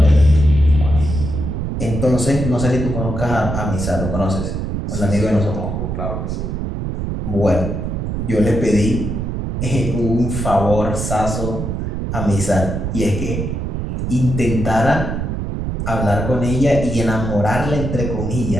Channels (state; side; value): noise; right; rumble, 3 dB below the sound